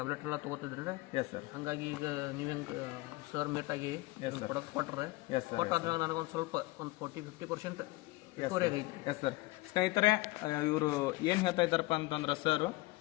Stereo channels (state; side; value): quieter; right; 21.9 dB